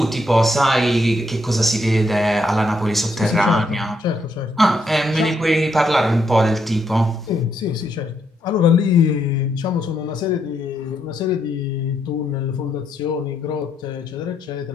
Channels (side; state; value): both; normal; correlation 0.76